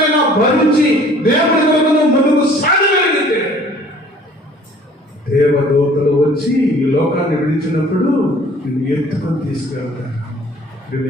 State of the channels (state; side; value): normal; both; correlation 0.52